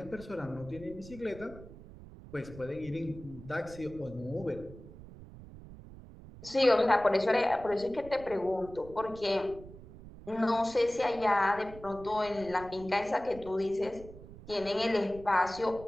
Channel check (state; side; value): noise; right; rumble, 16 dB below the sound